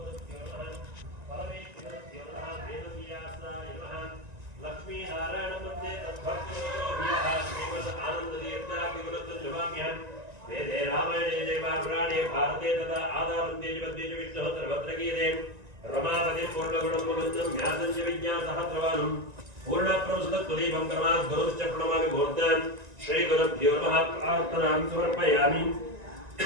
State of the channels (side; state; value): left; late; 1.9 ms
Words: भारते तथा आदावन्ते जगद्देश विष्णुः सर्वत्र गीयते रमापतिं पूर्णगुणं मुकुन्दं ज्ञातं च विज्ञासहस्रवानं पूर्णप्रवसतत्वदीपं कर्मात् गुरुश्च प्रणमामि मूर्तान् श्रीगुरुभ्यो नमः प्रार्थनां समर्पयामि